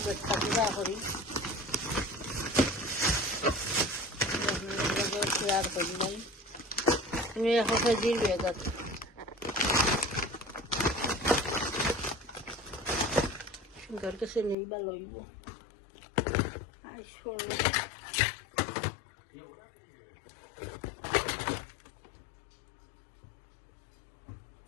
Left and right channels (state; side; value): drops out; right; at 14.6 s